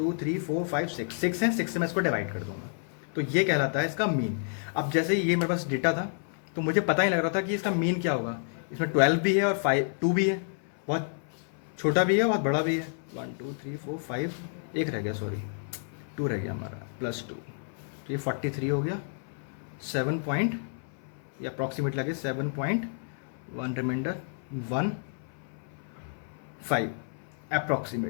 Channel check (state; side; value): silent; right; 57 dB below the other